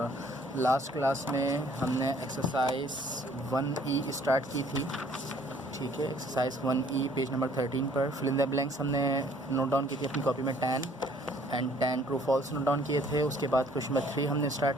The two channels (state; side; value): normal; both; correlation 0.59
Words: लास्ट क्लास में हमने एक्सरसाइज 1E स्टार्ट की थी। ठीक है, एक्सरसाइज 1E पेज नंबर 13 पर फिल इन द ब्लैंक्स हमने नोट डाउन की थी अपनी कॉपी में 10 ट्रू फॉल्स नोट डाउन किए थे। उसके बाद क्वेश्चन नंबर 3 हमने